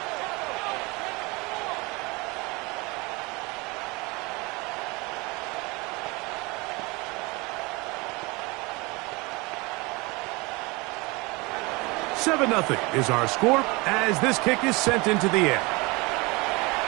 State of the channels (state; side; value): quieter; left; 25.5 dB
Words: Seven 0 is our score as this kick is sent into the air.